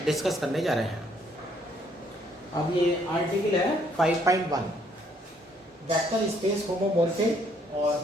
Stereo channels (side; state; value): both; normal; correlation 0.67